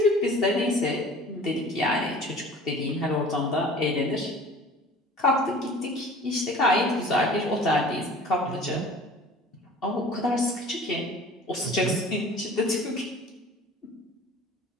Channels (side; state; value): both; normal; correlation 0.45